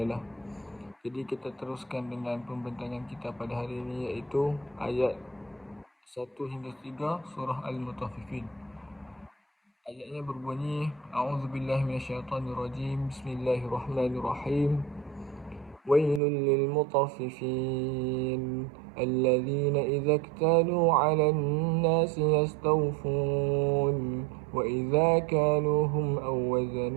Jadi kita teruskan dengan pembentangan kita pada hari ini, iaitu ayat 1 hingga 3 surah Al-Mutaffifin. Ayatnya berbunyi, A'udzubillahi minasyaitonirrajim, Bismillahirrahmanirrahim. Wailul lil mutaffifin alladzina idza iktalu 'alan nasi yastawfun wa idza kaluhum aw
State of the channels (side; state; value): left; drops out; at 16.2 s